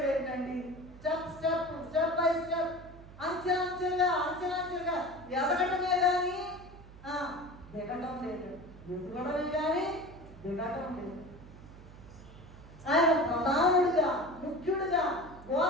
ఏంటండి? స్టెప్ బై స్టెప్, అంచెలంచెలుగా ఎదగటమే కానీ దిగటం లేదు, ఎదుగడమే కానీ దిగటం లేదు. ఆయన ప్రధానుడిగా, ముఖ్యుడిగా,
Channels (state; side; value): noise; right; hum, 18 dB below the sound